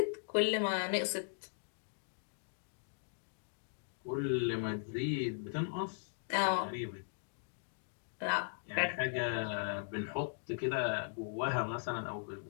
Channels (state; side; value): silent; right; digital silence